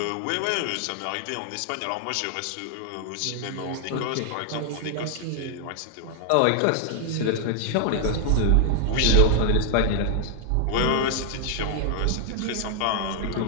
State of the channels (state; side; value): different; both; correlation 0.00